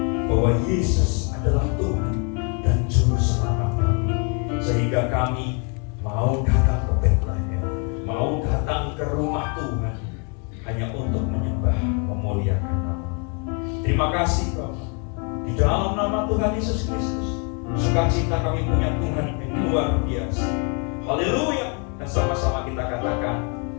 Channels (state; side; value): quieter; right; 36.9 dB